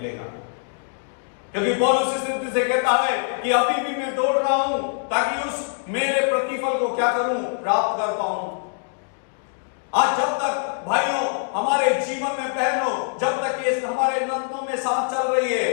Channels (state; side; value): silent; right; 63 dB below the other